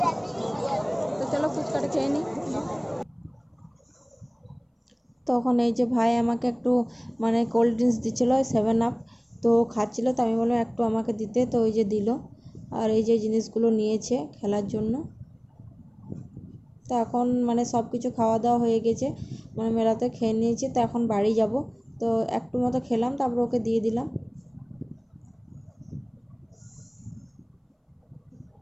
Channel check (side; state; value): both; identical; correlation 1.00